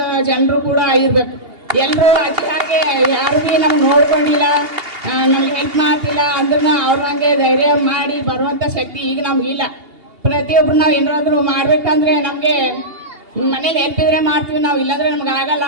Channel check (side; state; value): left; late; 2.8 ms